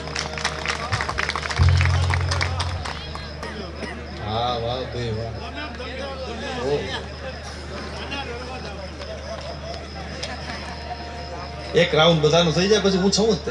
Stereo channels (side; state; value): both; identical; correlation 1.00